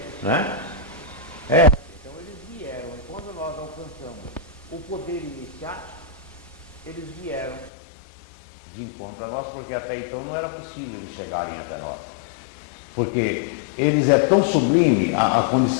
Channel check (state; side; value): drops out; right; at 7.7 s